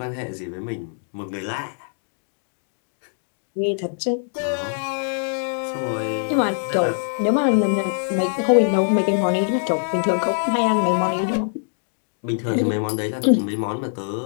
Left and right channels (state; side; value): silent; right; digital silence